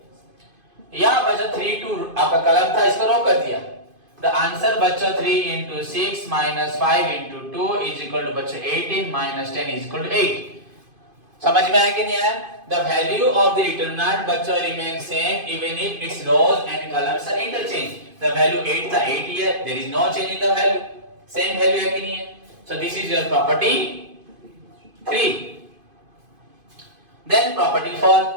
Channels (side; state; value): left; late; 2.5 ms